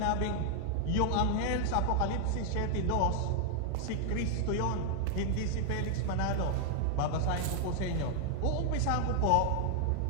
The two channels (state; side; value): different; both; correlation 0.00